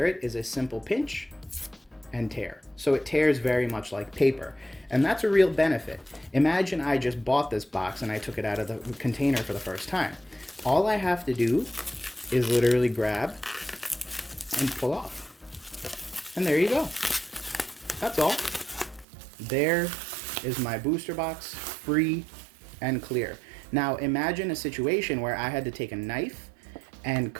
it is a simple pinch and tear. So it tears very much like paper. And that's a real benefit. Imagine I just bought this box and I took it out of the container for the first time. All I have to do is literally grab and pull off. And there you go. That's all. There is my booster box, free and clear. Now imagine a situation where I had to take a knife and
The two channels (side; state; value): left; drops out; at 19.1 s